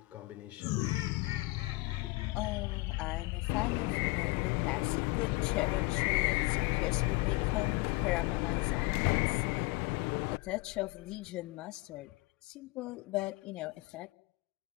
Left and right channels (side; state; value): right; quieter; 22.9 dB